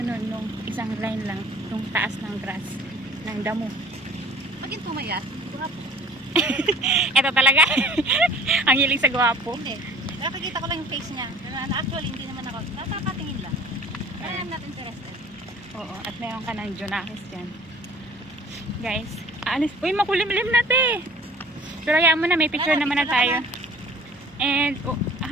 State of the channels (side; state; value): both; normal; correlation 0.48